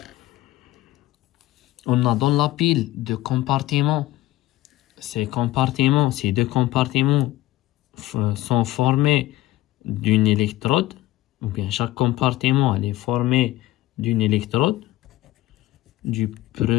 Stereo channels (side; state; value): right; quieter; 16.4 dB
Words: on a dans la pile de compartiments. Ces deux compartiments sont formés d'une électrode, ou bien chaque compartiment elle est formé d'une électrode, du